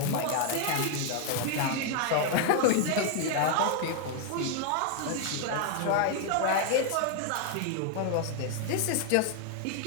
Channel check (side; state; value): both; different; correlation 0.00